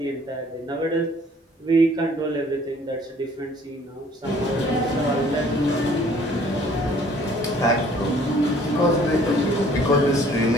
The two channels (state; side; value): normal; both; correlation 0.57